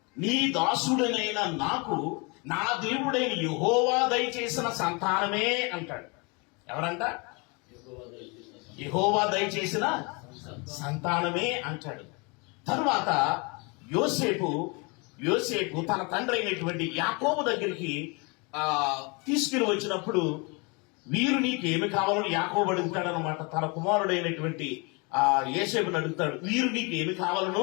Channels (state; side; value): quieter; right; 30.2 dB